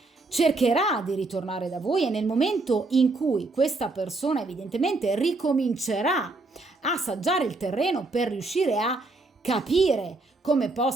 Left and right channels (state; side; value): quieter; left; 3.3 dB